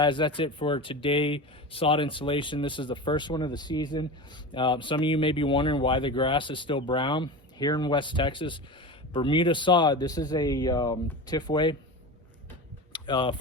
that's it for today sod installation. This is the first one of the season. Some of you may be wondering why the grass is still brown. Here in West Texas, Bermuda sod, this is a Tifway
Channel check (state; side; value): normal; both; correlation 0.27